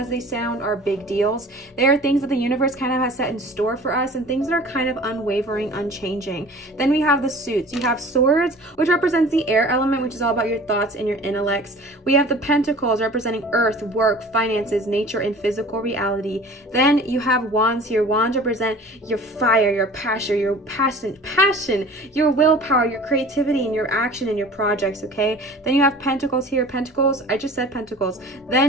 they sound, are big deals. They are things that the universe kind of has set in store for us and things that are kind of unwavering, unchanging. Then we have the suits. You have Swords, which represents the air element, which is all about your thoughts and your intellects. We have the Pentacles representing earth, work, finances, nature, and physical reality. Then you have Wands here. Wands represent your fire, your passion, your willpower, your creativity, and your action and your projects, okay? Then you have Pentacles here. Pentacles, I just said Pentacles.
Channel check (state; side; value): normal; both; correlation 0.44